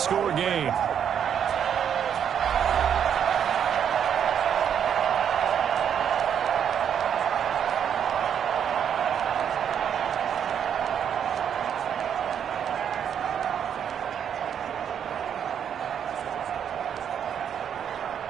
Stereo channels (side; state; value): left; quieter; 8.5 dB